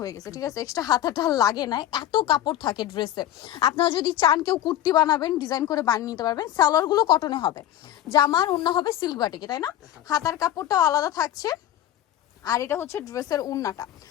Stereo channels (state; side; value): quieter; right; 12.4 dB